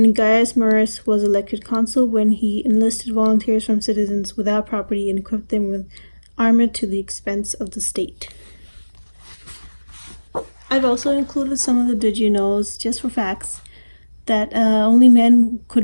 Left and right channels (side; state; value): both; inverted; correlation -1.00